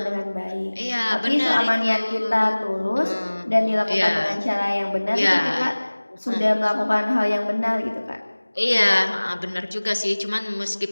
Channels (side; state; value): both; inverted; correlation -1.00